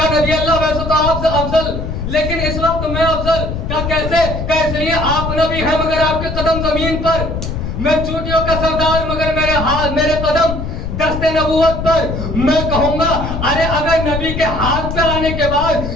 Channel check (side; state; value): left; noise; rumble, 5 dB below the sound